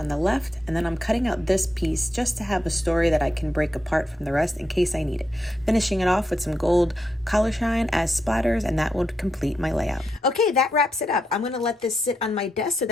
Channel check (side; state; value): both; normal; correlation 0.84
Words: the left, and then I'm cutting out this piece just to have a story that I can break apart from the rest in case I need it. Finishing it off with some gold color shine as splatters, and that will complete my layout. Okay, that wraps it up. I'm going to let this sit on my desk so